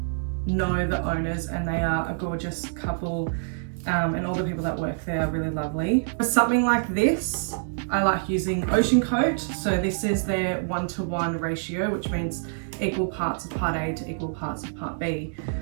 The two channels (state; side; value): silent; left; digital silence